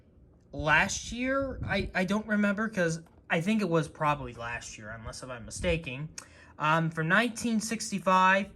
last year. I don't remember, because I think it was probably last year, unless if I'm mistaken. From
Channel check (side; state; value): both; identical; correlation 1.00